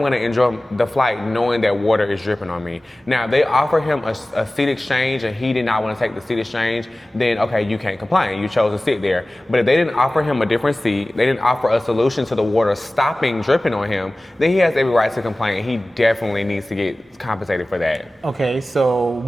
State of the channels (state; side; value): normal; both; correlation 0.97